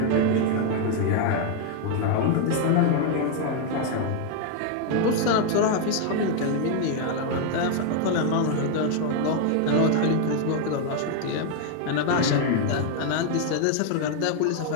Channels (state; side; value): different; both; correlation 0.00